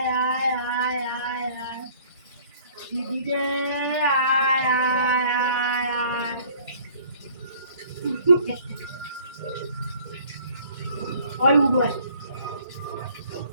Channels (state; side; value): inverted; both; correlation -0.55